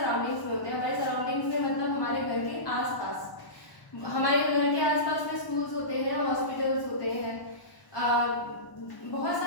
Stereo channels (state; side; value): late; right; 1.0 ms